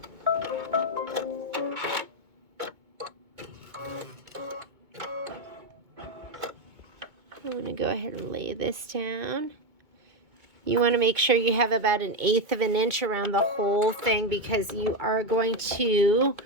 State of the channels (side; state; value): left; late; 2.2 ms